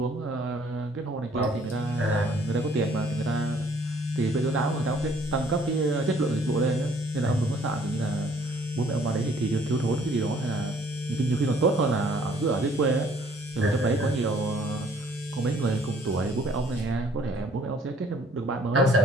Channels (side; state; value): both; normal; correlation 0.59